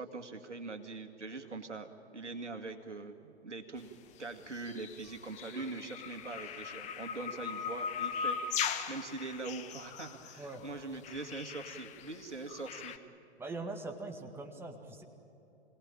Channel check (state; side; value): normal; both; correlation 0.04